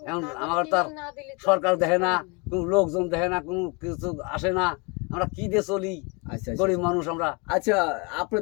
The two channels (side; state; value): right; quieter; 30.5 dB